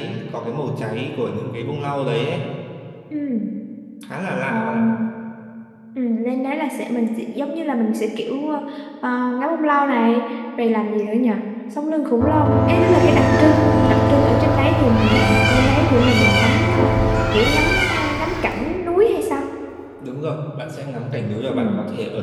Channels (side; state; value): both; identical; correlation 1.00